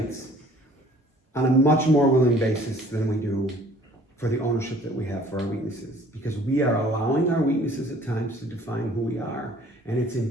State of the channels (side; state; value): both; normal; correlation 0.54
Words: on a much more willing basis than we do for the ownership that we have for our weaknesses. Because we are allowing our weaknesses at times to define who we are, and it's